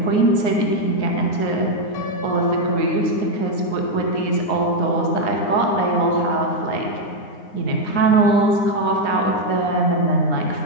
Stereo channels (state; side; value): late; right; 9.7 ms